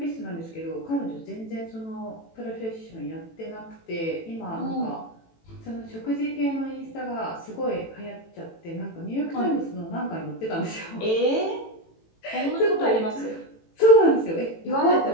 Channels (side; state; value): right; late; 18 ms